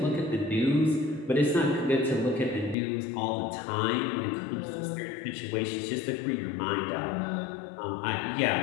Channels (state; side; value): drops out; right; at 2.8 s